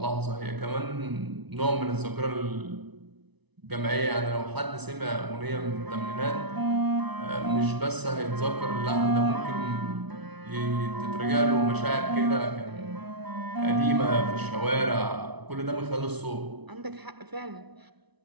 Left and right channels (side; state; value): left; late; 1.0 ms